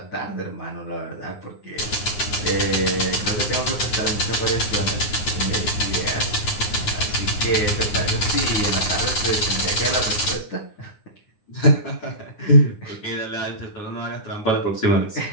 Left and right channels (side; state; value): right; late; 9.7 ms